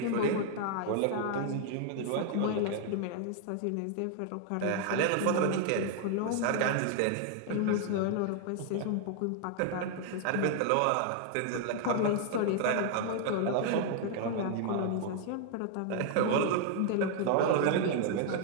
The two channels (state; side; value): different; both; correlation 0.00